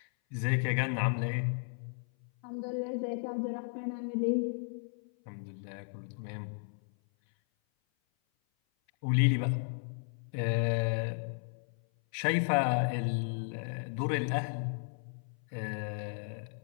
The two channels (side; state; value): right; silent; 55 dB below the other